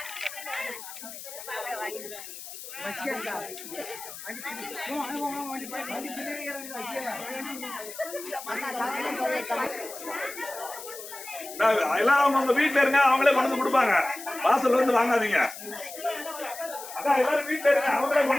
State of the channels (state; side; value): noise; left; hiss, 12 dB below the sound